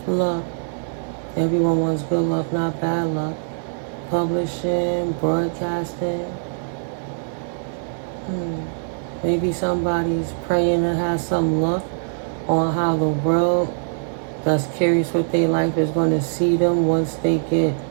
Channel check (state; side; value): silent; left; digital silence